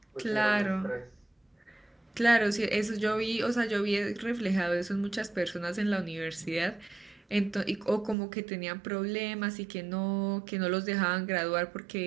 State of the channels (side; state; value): left; drops out; at 8.2 s